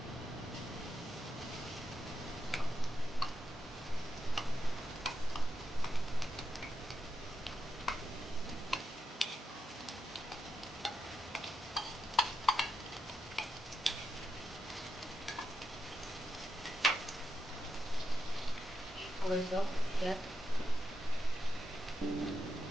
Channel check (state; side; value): normal; both; correlation 0.85